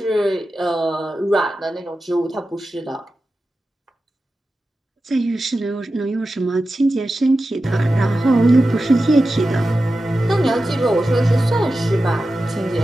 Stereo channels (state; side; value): normal; both; correlation 0.93